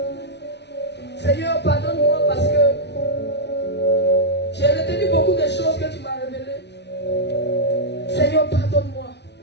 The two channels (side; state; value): right; late; 0.50 ms